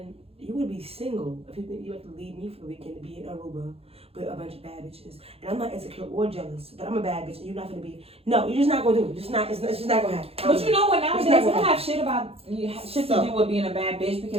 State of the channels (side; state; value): left; late; 0.29 ms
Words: you would be single if you had to leave me for the weekend to be in Aruba with a bunch of bad bitches. And I'm not insecure or jealous, but I'm a bad bitch, and you're not gonna be. No, you're just not gonna do it. It's just not gonna happen. But you know what? Nowadays, not we gonna don't have shit to do with being a bad bitch